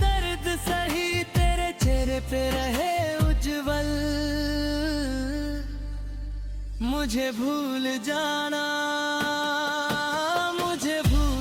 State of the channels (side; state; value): both; identical; correlation 1.00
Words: सही, तेरे चेहरे पे रहे उज्जवल। मुझे भूल जाना, मुझे